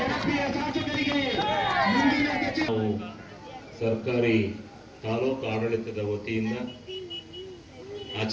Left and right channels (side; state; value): both; identical; correlation 1.00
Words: ಶಾಸಕರಿಗೆ, ಮುಂದಿನ ಸರ್ಕಾರಿ ತಾಲೂಕು ಆಡಳಿತದ ವತಿಯಿಂದ